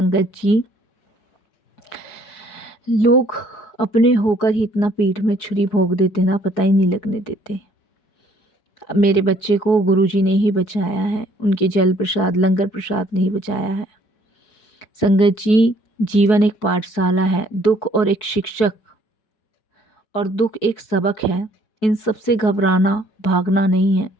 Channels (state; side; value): late; right; 4.7 ms